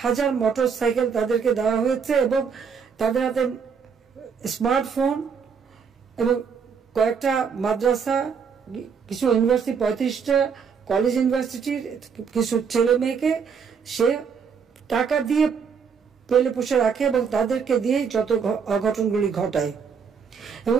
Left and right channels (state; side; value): quieter; left; 6.3 dB